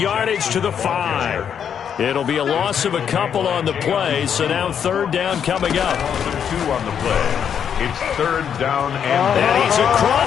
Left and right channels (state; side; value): quieter; right; 8.1 dB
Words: to the 5. It'll be a loss of a couple on the play, so now third down coming up. 2 on the play. It's third down And he's